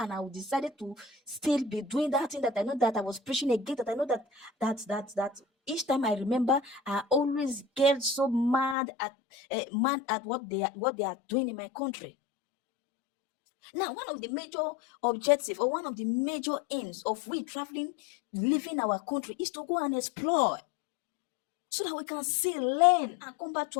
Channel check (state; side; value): drops out; right; at 8.8 s